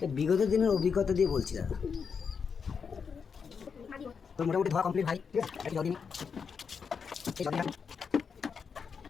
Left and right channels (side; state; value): right; quieter; 6.1 dB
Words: বিগত দিনের অভিজ্ঞতা দিয়ে বলছি দাদা। তো মোটামুটি ধোয়া কমপ্লিট ভাই, ঠিক আছে? জল দিন, এই জল দিন।